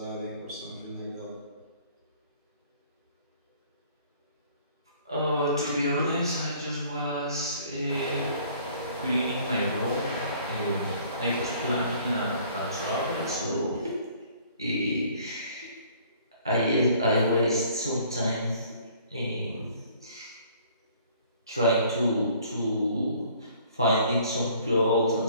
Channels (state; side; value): inverted; both; correlation -0.56